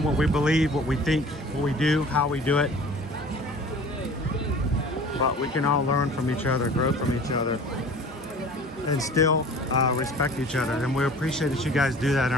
what we believe, what we think, what we do, how we do it. But we can all learn from each other, grow from each other, and still respect each other. And we appreciate that you guys do that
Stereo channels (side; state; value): both; normal; correlation 0.44